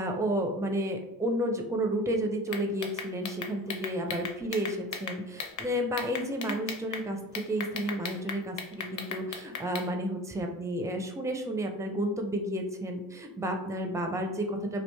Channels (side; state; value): both; normal; correlation 0.41